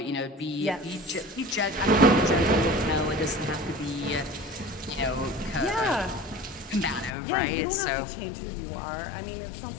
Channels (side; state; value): right; drops out; at 7.2 s